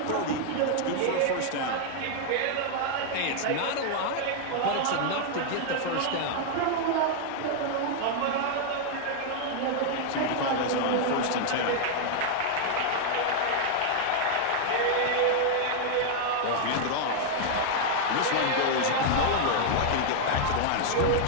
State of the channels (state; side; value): different; both; correlation 0.00